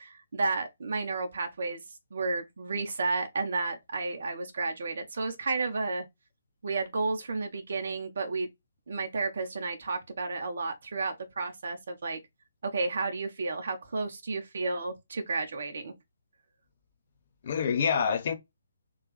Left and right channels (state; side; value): inverted; both; correlation -0.80